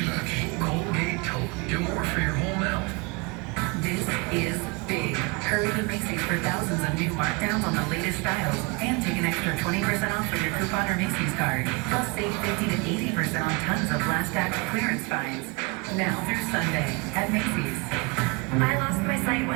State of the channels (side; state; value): left; quieter; 28.4 dB